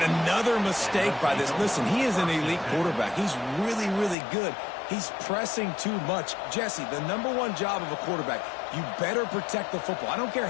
another mistake by this. Listen, he is an elite quarterback. He's really, really good. He's pressing too much. Jesse, the #1 job of a quarterback, you better protect the football. I don't care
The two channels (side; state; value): right; drops out; at 4.2 s